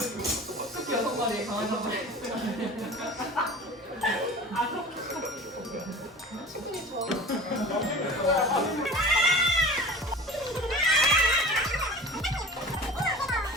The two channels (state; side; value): normal; both; correlation 0.39